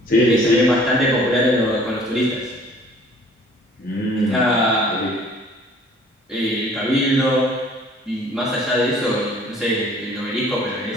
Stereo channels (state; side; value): normal; both; correlation 0.54